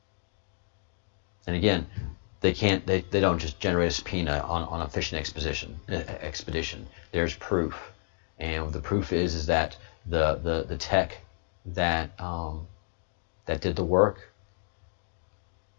And again, they don't just generate a subpoena on a fishing expedition. There's proof, and the proof is that the tech that did the work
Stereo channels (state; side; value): silent; right; digital silence